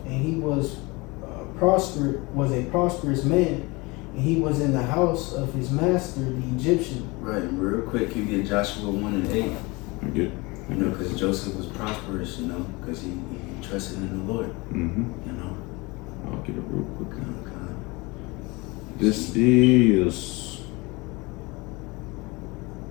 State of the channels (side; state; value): right; quieter; 25.0 dB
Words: and he was a prosperous man, and he was in the house of his master, the Egyptian. Right, real quick, you get Joshua 1 and 8. Good. Because Joseph was prosperous, because he trusted in the Lord. Mm-hmm. I'll get it real quick. Okay.